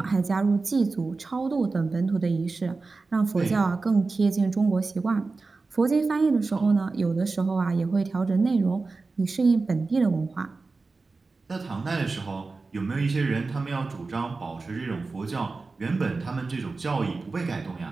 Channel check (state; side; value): quieter; left; 3.9 dB